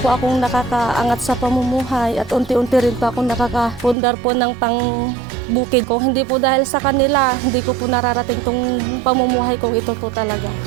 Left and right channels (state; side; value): drops out; left; at 4.0 s